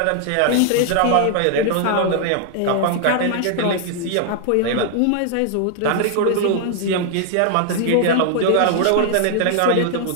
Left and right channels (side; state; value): both; different; correlation 0.00